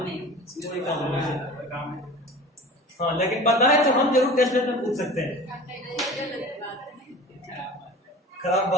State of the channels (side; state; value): both; normal; correlation 0.38